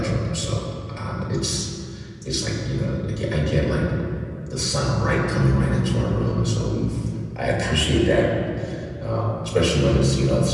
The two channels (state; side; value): identical; both; correlation 1.00